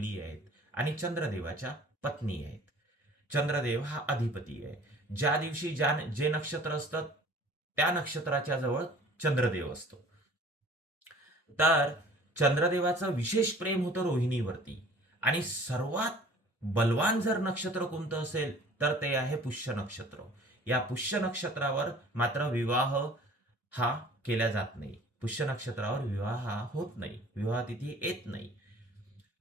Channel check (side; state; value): both; normal; correlation 0.49